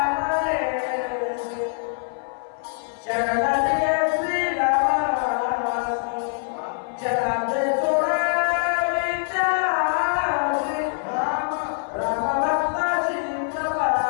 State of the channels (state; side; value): silent; right; 57 dB below the other